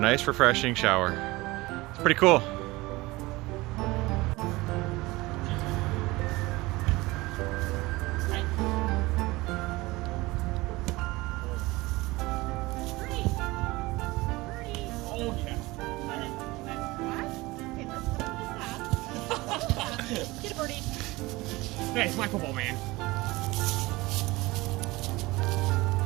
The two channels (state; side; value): quieter; left; 21.1 dB